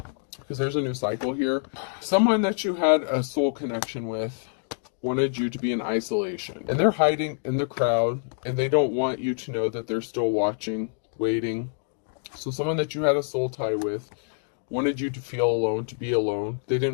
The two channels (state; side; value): silent; right; digital silence